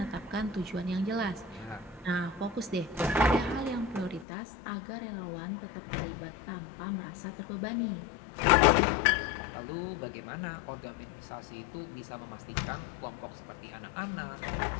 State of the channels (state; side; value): drops out; right; at 4.2 s